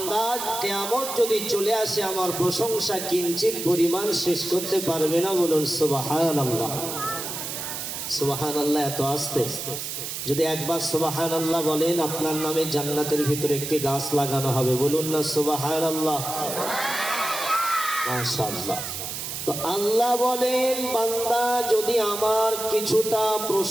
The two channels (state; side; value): noise; right; hiss, 6 dB below the sound